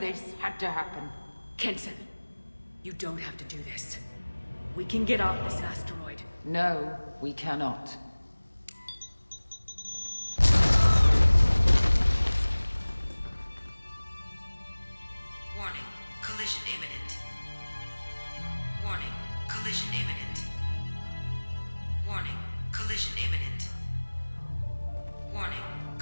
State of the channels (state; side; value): inverted; both; correlation -1.00